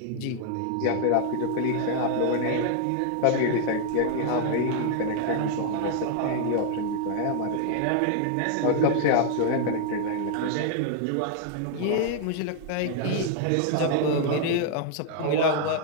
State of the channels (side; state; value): both; different; correlation 0.00